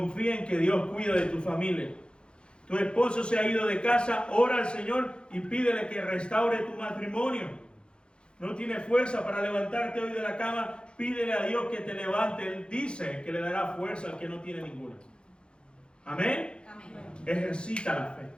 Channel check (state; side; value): late; right; 0.053 ms